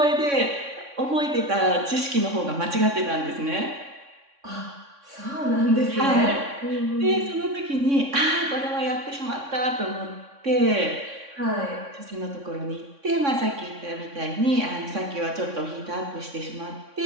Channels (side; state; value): left; late; 3.6 ms